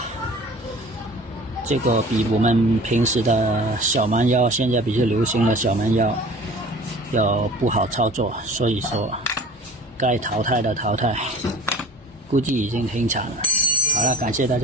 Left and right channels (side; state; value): both; normal; correlation 0.44